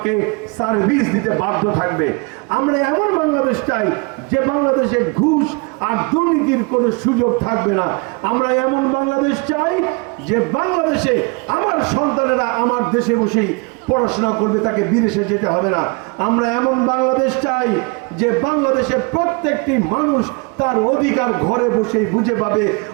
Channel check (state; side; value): quieter; left; 30.3 dB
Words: সার্ভিস দিতে বাধ্য থাকবে। আমরা এমন বাংলাদেশ চাই যে বাংলাদেশে ঘুষ আর দুর্নীতির কোনো সুযোগ থাকবে না। আমরা এমন বাংলাদেশ চাই যে বাংলাদেশে আমার সন্তানেরা আমার দেশে বসেই পড়াশোনা করবে, তাকে বিদেশে যেতে হবে না। আমরা এমন বাংলাদেশ চাই যে বাংলাদেশে প্রত্যেকটি মানুষ তার অধিকার ঘরে বসেই বুঝে পাবে,